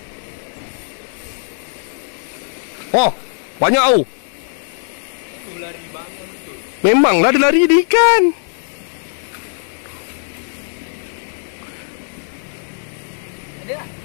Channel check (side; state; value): right; silent; digital silence